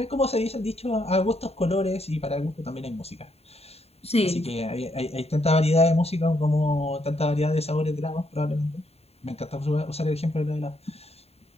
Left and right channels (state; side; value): late; right; 0.30 ms